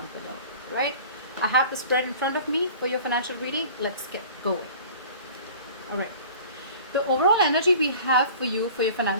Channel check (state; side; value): inverted; both; correlation -0.44